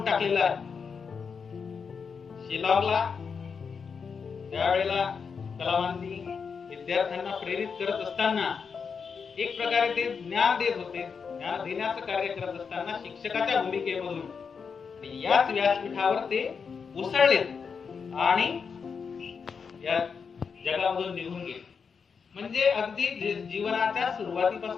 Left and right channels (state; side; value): quieter; right; 5.9 dB